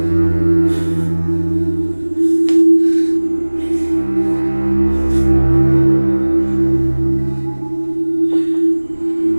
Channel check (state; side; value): inverted; both; correlation -1.00